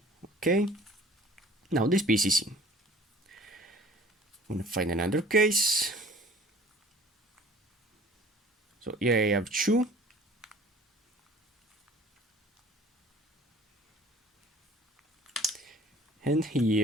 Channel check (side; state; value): both; normal; correlation 0.49